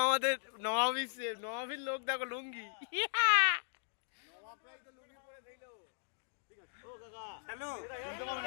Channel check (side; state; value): right; silent; digital silence